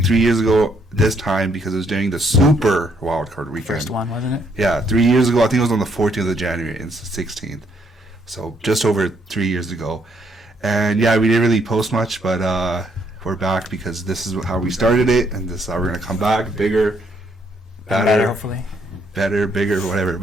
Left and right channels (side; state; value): both; normal; correlation 0.71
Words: 3 years ago this time because it was during the Super Wildcard Weekend. First one, wasn't it? Yeah, 3 years ago. I think it was on the 14th of January and it's the 16th. So just over 3 years ago. And yeah, we didn't really post much, but we're back because this is how we started it. And this is how we're going to come back. Bigger, better, hopefully. Better, bigger, whatever.